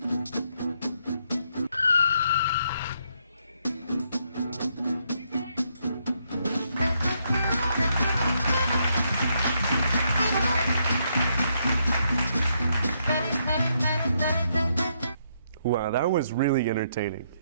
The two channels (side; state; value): both; inverted; correlation -0.75